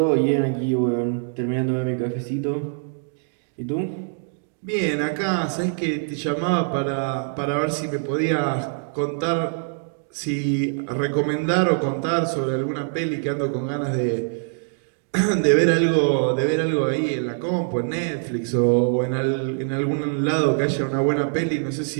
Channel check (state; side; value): silent; left; digital silence